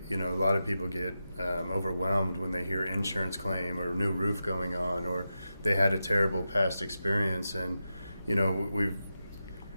lot of people get overwhelmed when they hear insurance claim or new roof going on, or they had a terrible past experience. And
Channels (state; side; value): inverted; both; correlation -0.90